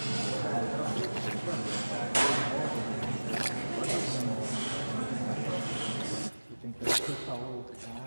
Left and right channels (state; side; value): inverted; both; correlation -1.00